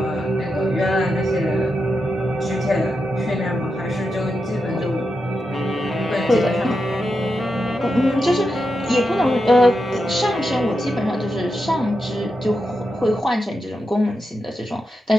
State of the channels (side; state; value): both; normal; correlation 0.87